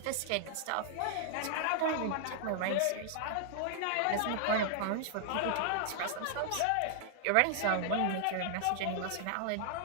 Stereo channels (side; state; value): both; different; correlation 0.00